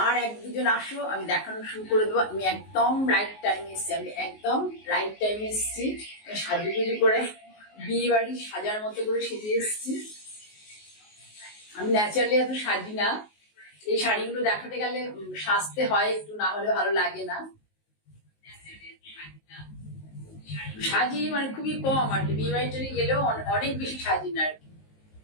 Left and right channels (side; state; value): right; late; 19 ms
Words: আর এক দুজন আসো, আমি দেখানো শুরু করে দেবো। আমি একদম রাইট টাইমে এসেছি। সাজুগুজু করে বিয়ে বাড়ি সাজার মতো করে সেজে এসেছি। আমি ন্যাচারালি এত সাজি না, এই শাড়িগুলো দেখাতে গেলে সাজতে হয় একটু, না হলে ভালো লাগে না। সাজি মানে খুবই কম আর কি, বিয়ে বাড়িতে গেলেও অনেক বেশি সাজি না আর কি।